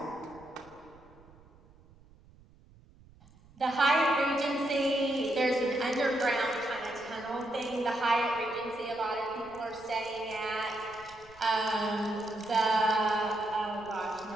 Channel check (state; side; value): noise; right; rumble, 25 dB below the sound